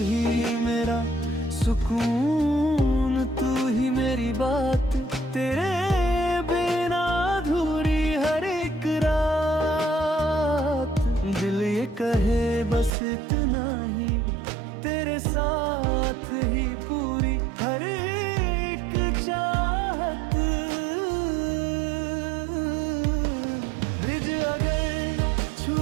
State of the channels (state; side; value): drops out; left; at 12.9 s